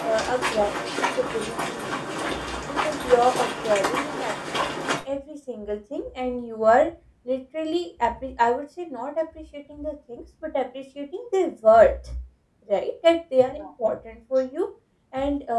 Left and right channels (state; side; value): identical; both; correlation 1.00